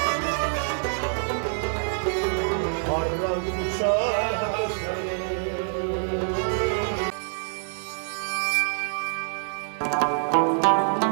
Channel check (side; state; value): left; silent; 61 dB below the other